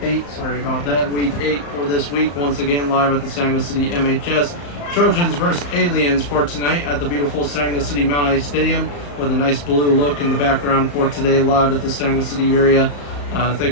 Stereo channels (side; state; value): right; late; 35 ms